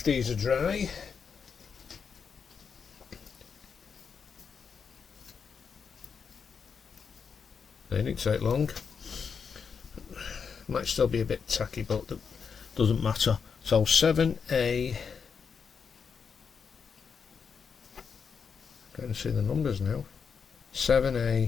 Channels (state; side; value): quieter; right; 6.2 dB